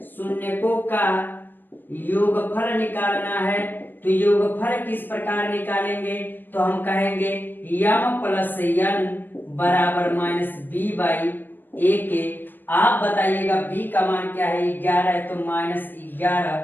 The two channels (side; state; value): right; late; 0.093 ms